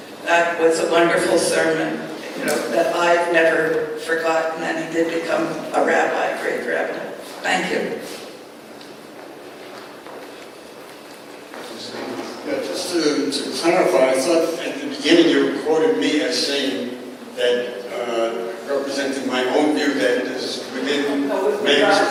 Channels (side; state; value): both; identical; correlation 1.00